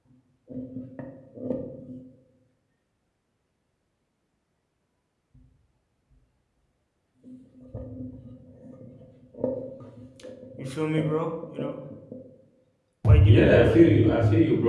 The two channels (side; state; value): both; identical; correlation 1.00